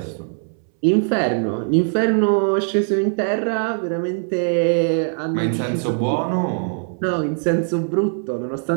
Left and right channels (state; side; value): silent; left; 65 dB below the other